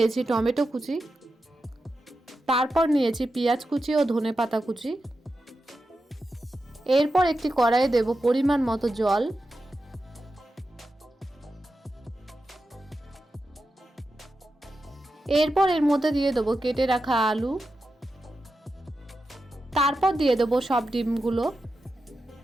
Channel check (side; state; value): both; normal; correlation 0.90